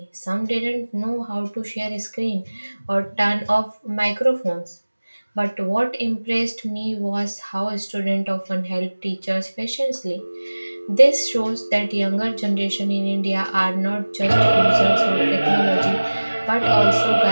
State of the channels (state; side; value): inverted; both; correlation -1.00